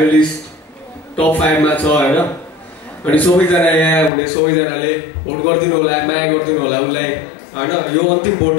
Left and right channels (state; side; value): drops out; right; at 4.1 s